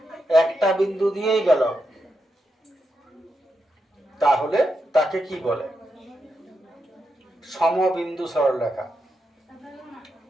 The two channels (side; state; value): both; normal; correlation 0.85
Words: একটা বিন্দু দিয়েই গেল, তাহলে তাকে কি বলে? সমবিন্দু সরলরেখা।